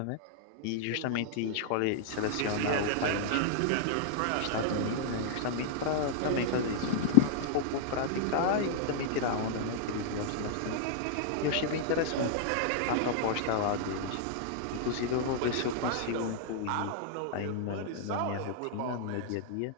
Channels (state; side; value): different; both; correlation -0.01